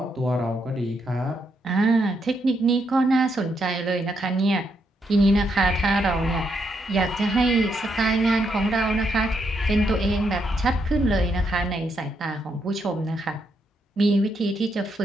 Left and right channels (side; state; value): both; normal; correlation 0.78